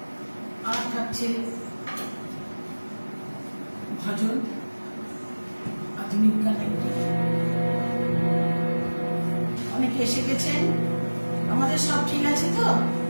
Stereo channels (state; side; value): inverted; both; correlation -1.00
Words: আর থাকছে ভজন, আধুনিক গান। অনেকে এসে গেছেন, আমাদের সব ঠিক আছে তো?